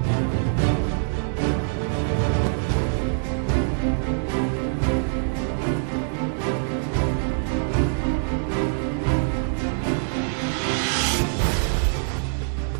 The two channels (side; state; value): left; silent; 60 dB below the other